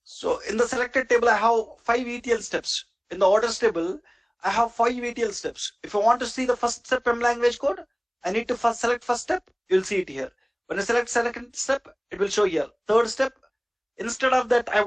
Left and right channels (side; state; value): both; identical; correlation 1.00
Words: So in the selected table, I have 5 ETL steps. In the orders table, I have 5 ETL steps. If I want to see the first step M language code, I need to first select first step. You'll see it here. When I select second step, it will show here. Third step. Instead of that, I